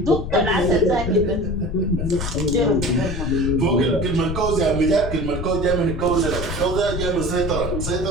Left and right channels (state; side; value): noise; left; rumble, 4 dB below the sound